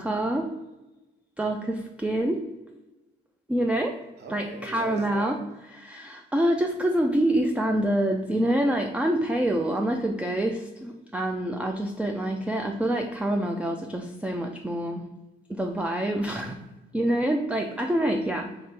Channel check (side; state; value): both; normal; correlation 0.81